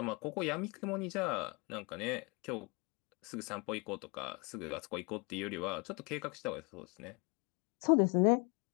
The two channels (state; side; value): quieter; right; 30.4 dB